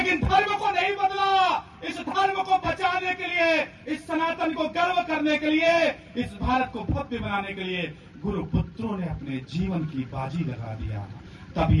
धर्म को नहीं बदला। इस धर्म को बचाने के लिए, इस सनातन को गर्व करने के लिए, इस भारत को भव्य बनाने के लिए गुरु पुत्रों ने अपने जीवन की बाजी लगा दिया। तब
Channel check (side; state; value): both; identical; correlation 1.00